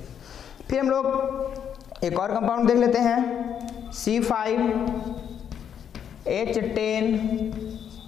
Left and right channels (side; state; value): right; quieter; 8.5 dB